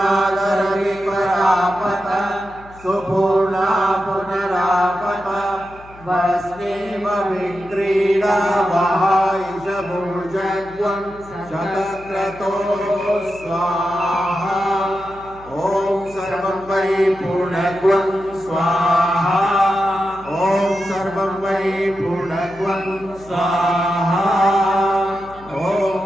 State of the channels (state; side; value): noise; left; hum, 22 dB below the sound